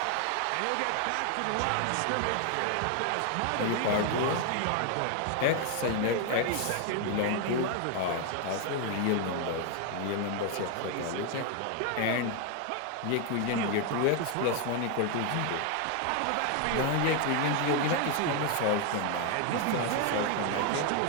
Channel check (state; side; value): different; both; correlation 0.01